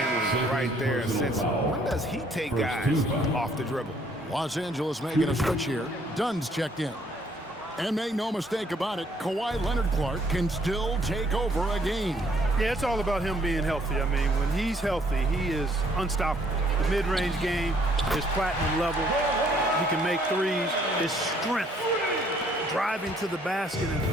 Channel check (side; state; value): both; normal; correlation 0.64